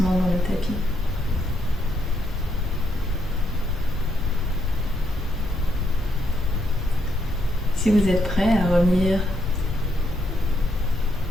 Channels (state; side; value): normal; both; correlation 0.76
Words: dans le tapis. Si vous êtes prêt à revenir